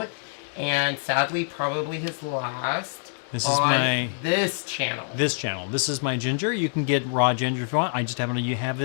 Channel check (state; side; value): silent; right; 61 dB below the other